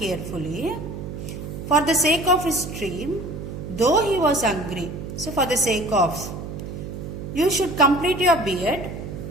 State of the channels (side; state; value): right; noise; hum, 8 dB below the sound